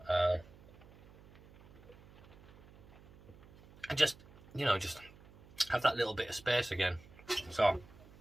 And just have that little bit of space again. So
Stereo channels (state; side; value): noise; right; hum, 22 dB below the sound